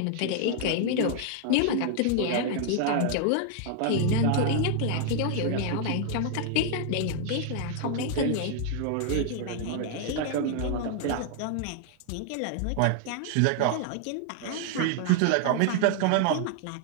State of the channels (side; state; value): both; different; correlation 0.00